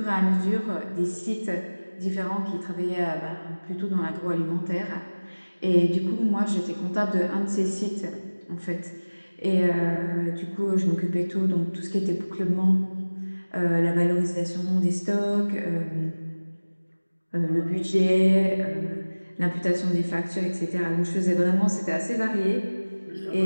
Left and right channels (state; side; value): inverted; both; correlation -1.00